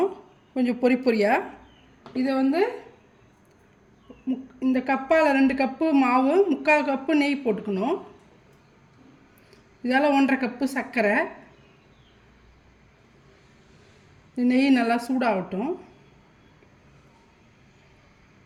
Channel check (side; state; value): both; identical; correlation 1.00